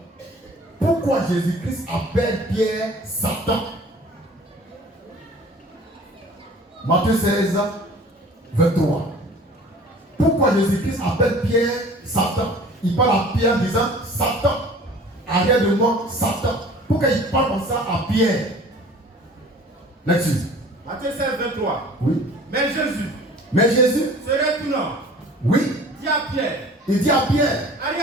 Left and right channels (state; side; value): normal; both; correlation 0.47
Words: Pourquoi Jésus-Christ appelle Pierre Satan? Matthieu 16, 23. Pourquoi Jésus-Christ appelle Pierre Satan? Il parle à Pierre en disant Satan, arrière de moi, Satan. Pourquoi il parle comme ça à Pierre? Lecture. Matthieu 16, 23. Oui. Mais Jésus se retournant, oui. dit à Pierre, Il dit à Pierre,